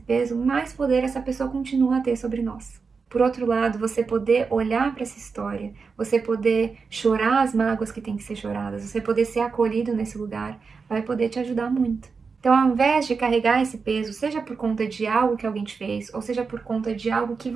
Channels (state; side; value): quieter; left; 5.0 dB